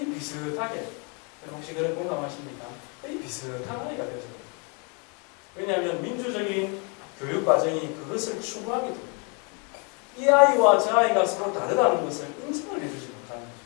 비슷하게, 혹시 그런 공감하십니까? 거의 비슷한 아이가 되어져요. 왜냐하면 민주적인 교육 과정이 그것을 추구하게 됩니다. 이 아이와 저 아이가 서로 다르다는 것을 인정을 해주지 못하는 거죠.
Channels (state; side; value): quieter; right; 34.5 dB